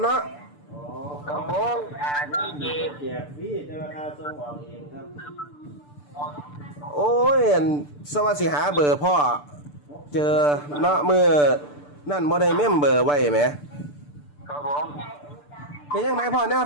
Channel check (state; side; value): late; right; 6.8 ms